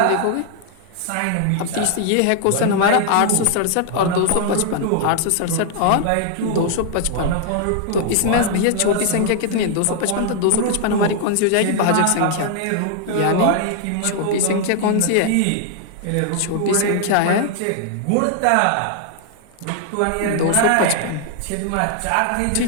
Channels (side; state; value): both; different; correlation 0.00